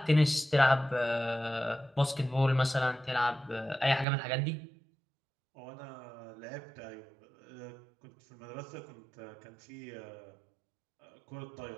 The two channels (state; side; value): drops out; left; at 4.0 s